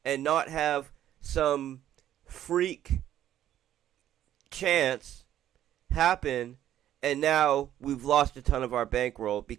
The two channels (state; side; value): quieter; left; 11.7 dB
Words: and not have some freak chance happen, and now we've lost a ton of our bankroll